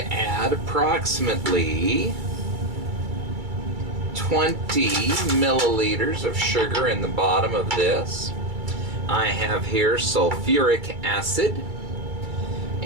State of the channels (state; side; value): late; left; 2.3 ms